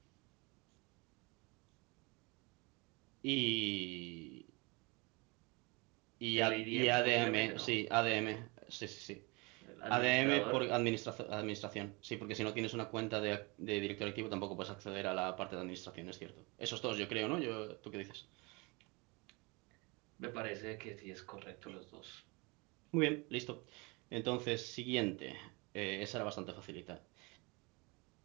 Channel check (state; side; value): quieter; left; 27.6 dB